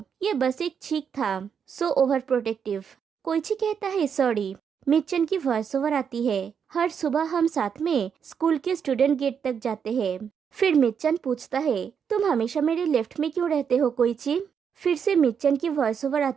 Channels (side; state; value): left; quieter; 7.2 dB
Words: ये बस एक छींक था, सो ओवर प्रोटेक्टिव। कोइची कहता है, सॉरी। मिच्चन की वॉइस ओवर आती है, हर सुबह हम साथ में स्कूल के स्टूडेंट गेट तक जाते हैं। फिर मिच्चन पूछता है, तुम हमेशा मेरे लेफ्ट में क्यों रहते हो कोइची। फिर से मिच्चन की वॉइस ओवर